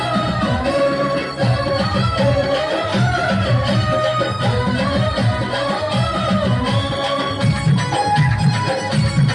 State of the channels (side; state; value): both; identical; correlation 1.00